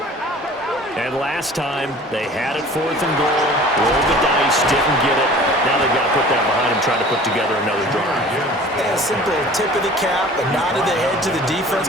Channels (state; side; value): normal; both; correlation 0.45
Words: And last time, they had it 4th and goal, rolled the dice, didn't get it. Now they've got to put that behind them, try to put together another drive. Yeah, a simple tip of the cap, a nod of the head to the defense.